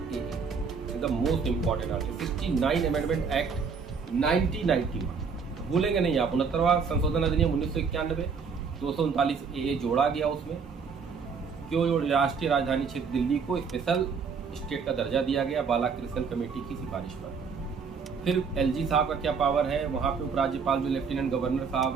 is the most important article. 69 amendment act 1991, भूलेंगे नहीं आप। 69वां संशोधन अधिनियम 1991, 239A जोड़ा गया उसमें। क्यों राष्ट्रीय राजधानी क्षेत्र दिल्ली को स्पेशल स्टेट का दर्जा दिया गया, बालाकृष्ण कमेटी की सिफारिश पर। फिर एलजी साहब का क्या पावर है, वहाँ पे उपराज्यपाल जो लेफ्टिनेंट गवर्नर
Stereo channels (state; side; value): quieter; left; 5.6 dB